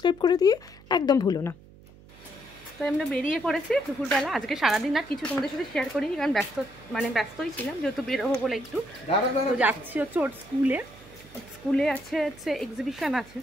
করে দিয়ে একদম ভুলো না। তো আমরা বেরিয়ে পড়েছি দুপুরবেলা। আজকে সারাদিন আর কিছু তোমাদের সাথে শেয়ার করিনি, কারণ ব্যস্তই ছিলাম, যেহেতু বেরোবো বলে একটু। তো যাচ্ছি হচ্ছে ওর স্কুলে আছে এক্সিবিশন আছে।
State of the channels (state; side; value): noise; right; hum, 22 dB below the sound